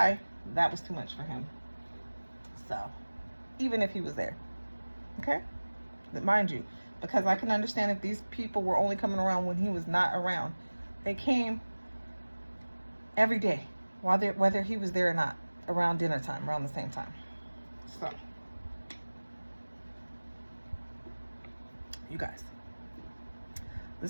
That was too much for him. So, even if he was there, okay? But mind you, because I can understand if these people were only coming around when he was not around. They came every day, whether he was there or not, around dinner time, around the same time. So, you guys,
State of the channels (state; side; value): inverted; both; correlation -1.00